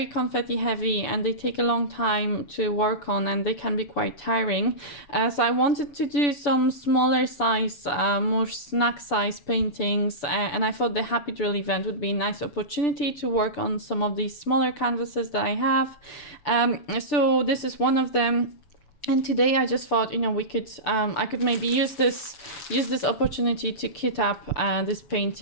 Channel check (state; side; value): late; right; 7.1 ms